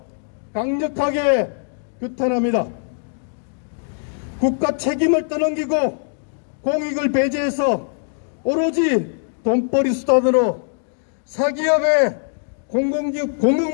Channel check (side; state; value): right; silent; digital silence